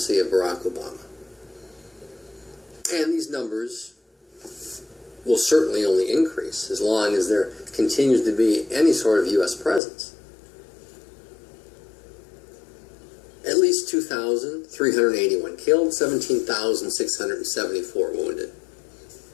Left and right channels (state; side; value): drops out; right; at 9.8 s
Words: of Barack Obama. And these numbers will certainly only increase as long as there continues to be any sort of U.S. presence. At least 2,381 killed, 17,674 wounded.